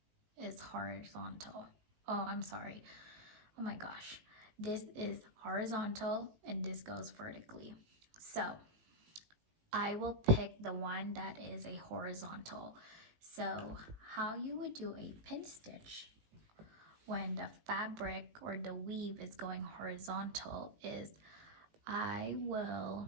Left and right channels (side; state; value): left; late; 19 ms